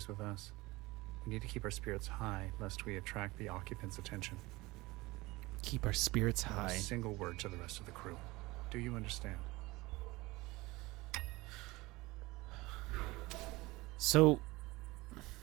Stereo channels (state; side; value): quieter; left; 21.3 dB